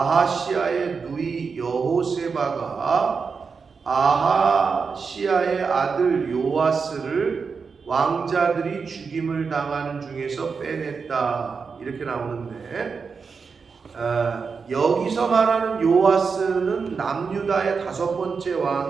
누이 여호세바가 아하시아의 아들 요아스를 왕자들이 죽임을 당하는 중에서 빼냈다, 이렇게 나오는데, 여기서 말하는 요아스는 남유다의 5번째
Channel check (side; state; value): left; quieter; 5.3 dB